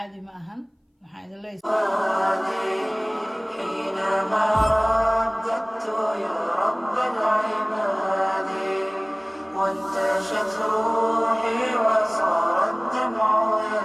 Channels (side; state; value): both; identical; correlation 1.00